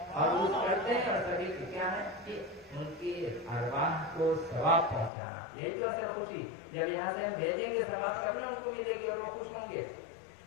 اور عرس کرتے ہیں، اور سبھی کی کیا ہے کہ ان کی ارواح کو ثواب پہنچانا، یہی تو اصل خوشی، جب یہاں سے ہم بھیجیں گے ثواب کرنا ان کو ملے گی اور وہ خوش ہوں گے۔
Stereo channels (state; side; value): drops out; right; at 5.1 s